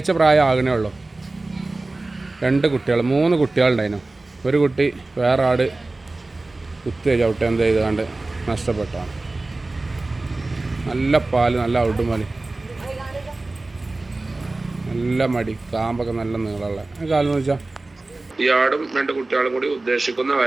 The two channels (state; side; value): quieter; left; 3.1 dB